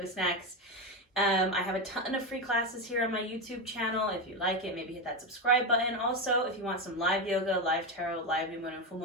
snacks. I have a ton of free classes here on my YouTube channel. If you like it, maybe hit that subscribe button. Also, if you want some live yoga, live tarot, live new moon and full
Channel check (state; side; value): normal; both; correlation 0.13